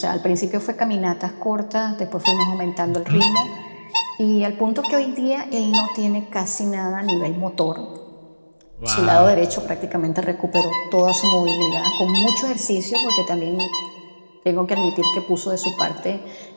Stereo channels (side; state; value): both; inverted; correlation -1.00